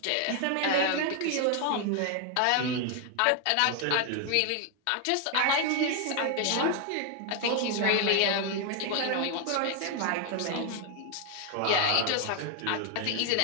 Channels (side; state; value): both; different; correlation 0.01